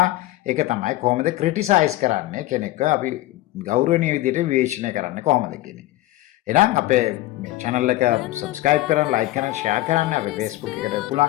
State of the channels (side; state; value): right; quieter; 16.8 dB